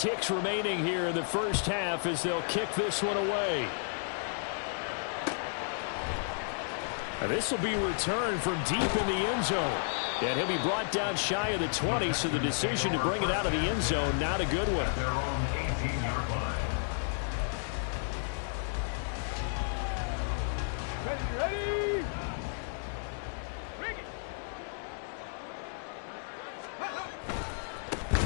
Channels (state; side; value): silent; right; digital silence